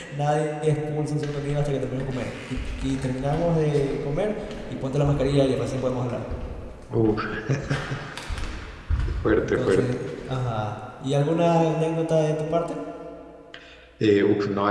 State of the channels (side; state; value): both; identical; correlation 1.00